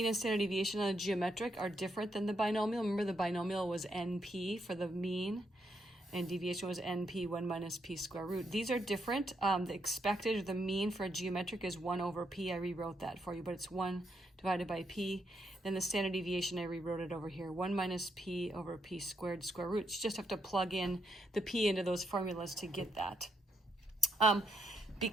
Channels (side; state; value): both; normal; correlation 0.78